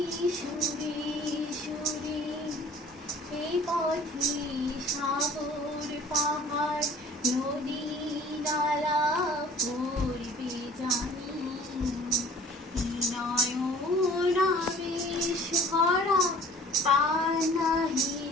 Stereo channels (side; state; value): both; normal; correlation 0.49